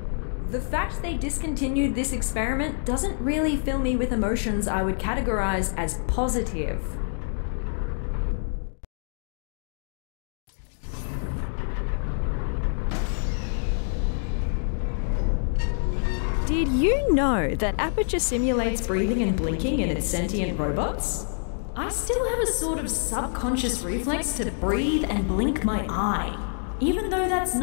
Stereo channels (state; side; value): silent; right; digital silence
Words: The fact they discontinued this experiment doesn't really fill me with emotions I would categorize as positive. Did you know that Aperture simulates breathing and blinking in its sentient robots? I still have a sort of subconscious reflex to breathe and blink my eye, even though that's